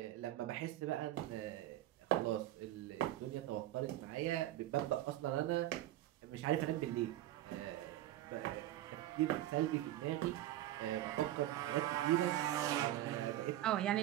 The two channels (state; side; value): quieter; left; 14.1 dB